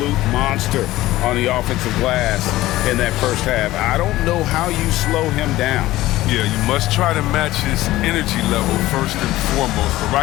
monster on the offensive glass in that first half. I don't know how you slow him down. Yeah, you must try to match his energy level first and foremost. But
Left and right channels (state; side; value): quieter; right; 16.6 dB